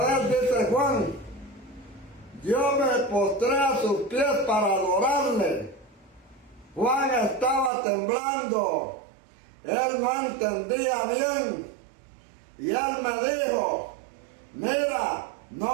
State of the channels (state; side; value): drops out; left; at 7.7 s